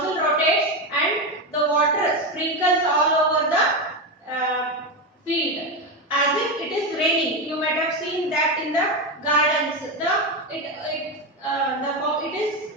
rotates and the water sprinkles all over the field as if it is raining. You might have seen that in the gardens. It is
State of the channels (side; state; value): both; normal; correlation 0.14